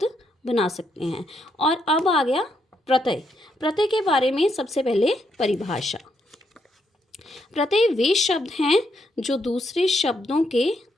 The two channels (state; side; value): normal; both; correlation 0.78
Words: बना सकते हैं। और अब आ गया प्रत्यय। प्रत्यय के बारे में सबसे पहले परिभाषा। प्रत्यय वे शब्द हैं जो दूसरे शब्दों के